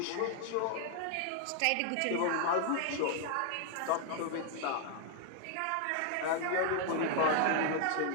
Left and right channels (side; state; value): both; different; correlation 0.00